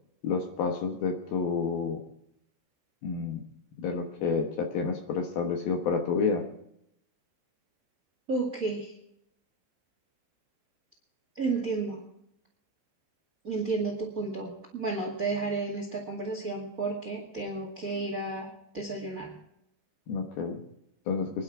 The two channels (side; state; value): both; normal; correlation 0.01